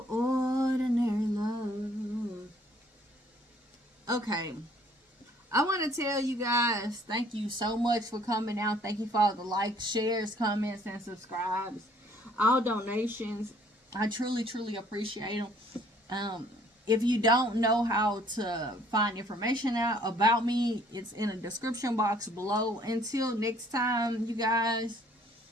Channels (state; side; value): normal; both; correlation 0.59